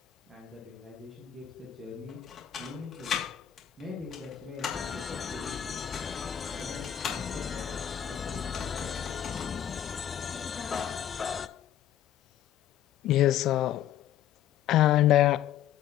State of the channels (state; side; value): quieter; right; 10.8 dB